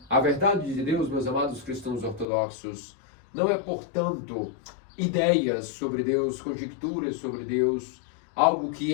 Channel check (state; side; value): drops out; right; at 2.2 s